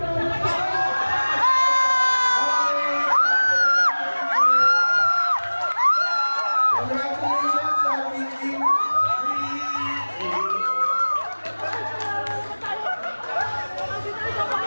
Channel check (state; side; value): inverted; both; correlation -1.00